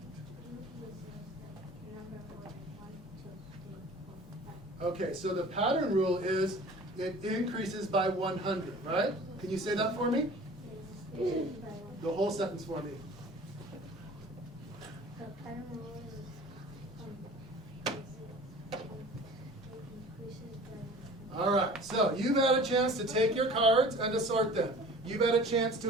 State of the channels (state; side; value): normal; both; correlation 0.44